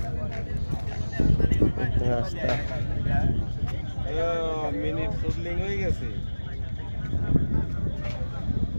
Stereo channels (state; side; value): inverted; both; correlation -1.00